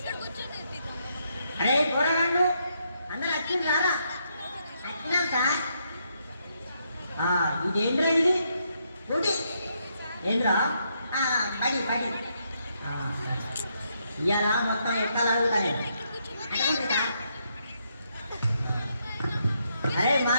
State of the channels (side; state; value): both; inverted; correlation -0.77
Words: అరే పోరాడు అందరూ వచ్చింది రారా వచ్చినాం సార్. ఇదేంద్రా ఇది ఊటి ఏంద్రా పడి పడి ఇవాళ మొత్తం ఎక్కాలి అడుగుతాను. అరే